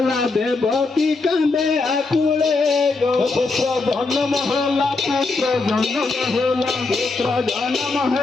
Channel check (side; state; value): right; quieter; 3.7 dB